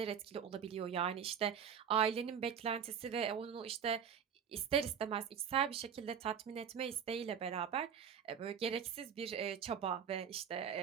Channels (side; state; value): left; quieter; 7.8 dB